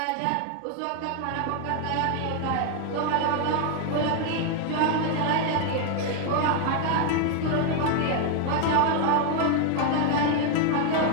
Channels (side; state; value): both; different; correlation 0.00